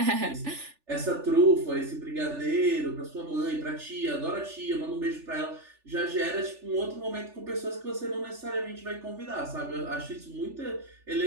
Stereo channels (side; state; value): left; late; 3.4 ms